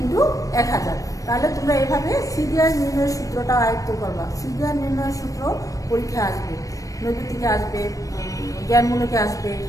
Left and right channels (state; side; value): late; right; 0.16 ms